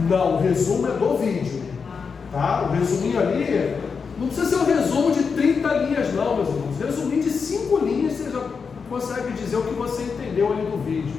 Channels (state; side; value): quieter; right; 5.6 dB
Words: Não, o resumo é do vídeo, tá? O resuminho ali, não precisa ser um resumo de 30 linhas não, meus irmãos. Resuminho de 5 linhas, você já consegue dizer o que você entendeu ali do vídeo.